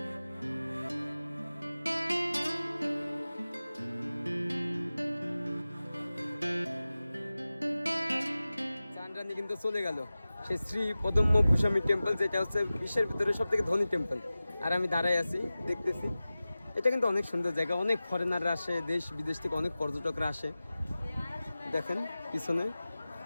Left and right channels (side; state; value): both; inverted; correlation -0.96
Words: চান্দ্রানী কিন্তু চলে গেল সেই শ্রী পদ্মভূষণী টেম্পল, যেটা হচ্ছে বিশ্বের ভিতরে সব থেকে ধনী টেম্পল। আর আমি দাঁড়াই আছি, দেখতেছি। এটা কিন্তু অনেক সুন্দর জায়গা, অনেক ফরেনাররা আসে, দেশ বিদেশ থেকে অনেক পর্যটকরা আসে। দেখেন পিছনে।